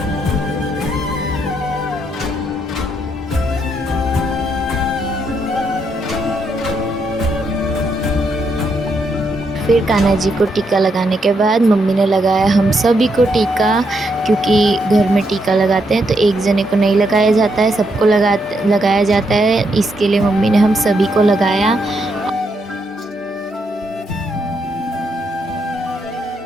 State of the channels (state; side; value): normal; both; correlation 0.78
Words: फिर कान्हा जी को टीका लगाने के बाद मम्मी ने लगाया हम सभी को टीका, क्योंकि घर में टीका लगाते हैं तो एक जने को नहीं लगाया जाता है, सबको लगाया जाता है। इसके लिए मम्मी ने हम सभी को लगाया।